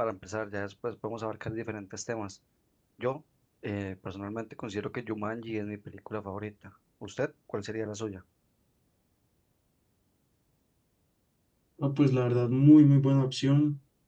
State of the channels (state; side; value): identical; both; correlation 1.00